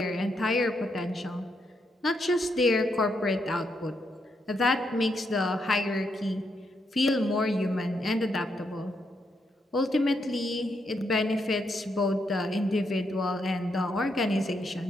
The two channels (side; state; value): both; normal; correlation 0.79